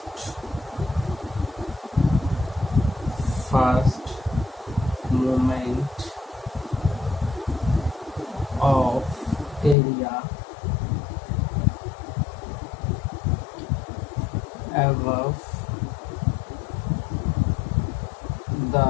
first movement of area above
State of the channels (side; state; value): right; drops out; at 9.8 s